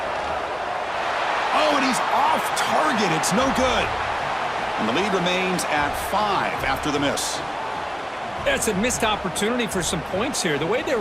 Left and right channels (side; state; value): both; identical; correlation 1.00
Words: Oh, and he's off target. It's no good. And the lead remains at 5 after the miss. That's a missed opportunity for some points here. The way they